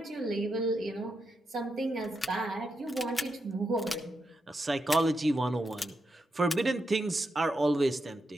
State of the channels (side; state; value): both; normal; correlation 0.85